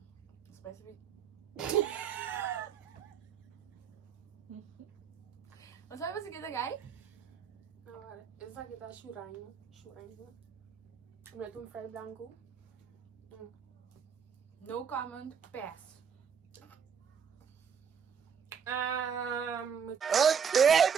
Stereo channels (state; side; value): quieter; left; 7.0 dB